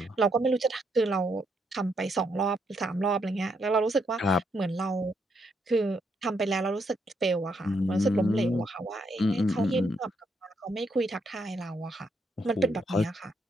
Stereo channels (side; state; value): both; normal; correlation 0.76